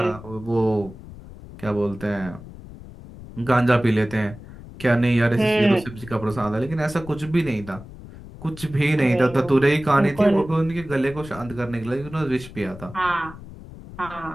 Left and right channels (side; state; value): left; noise; rumble, 16 dB below the sound